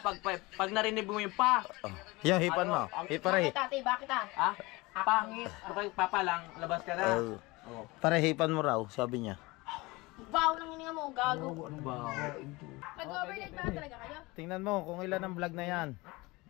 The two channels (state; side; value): quieter; right; 22.9 dB